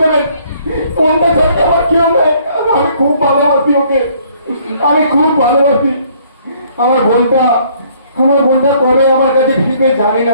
দেবেন। বোনটা ছাড়তে আমার কেউ নেই, আমি খুব ভালোবাসি ওকে, আমি খুব ভালোবাসি। আমার বোনটা কবে আমার কাছে ফিরবে জানি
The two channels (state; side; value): inverted; both; correlation -0.62